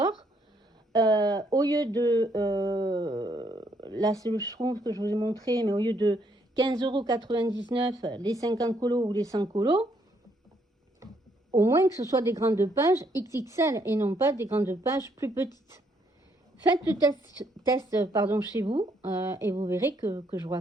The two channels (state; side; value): normal; both; correlation 0.71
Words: Au lieu de, là c'est le Schtroumpf que je vous ai montré, mais au lieu de 15,99 €, les 50 colos ou les 100 colos, au moins que ce soit des grandes pages XXL et non pas des grandes pages plus petites. Faites le test chez vous et vous verrez que je ne vous